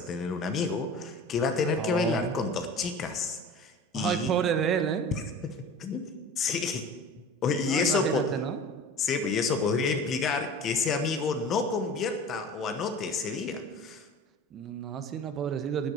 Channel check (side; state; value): both; normal; correlation 0.39